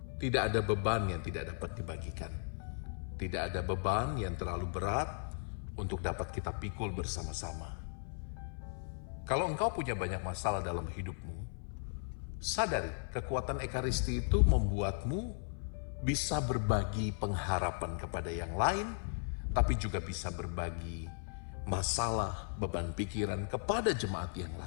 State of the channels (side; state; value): right; silent; 53 dB below the other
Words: tidak ada beban yang tidak dapat dibagikan. Tidak ada beban yang terlalu berat untuk dapat kita pikul bersama-sama. Kalau engkau punya banyak masalah dalam hidupmu, sadari kekuatan Ekaristi itu membuatmu bisa berbagi pengharapan kepada yang lain, tapi juga bisa berbagi masalah, beban pikiran kepada jemaat yang